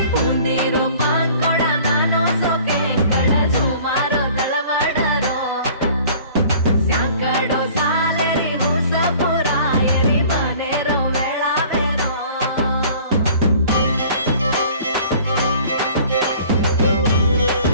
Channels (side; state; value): both; inverted; correlation -0.50